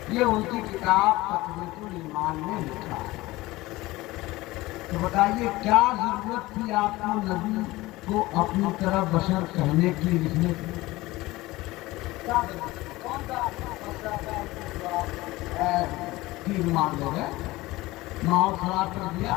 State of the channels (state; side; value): quieter; right; 19.3 dB